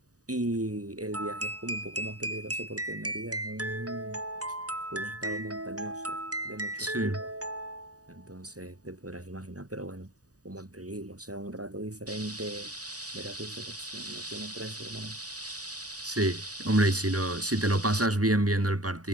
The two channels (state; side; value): late; left; 0.67 ms